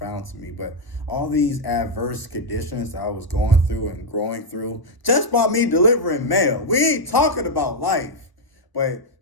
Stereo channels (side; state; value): right; late; 1.0 ms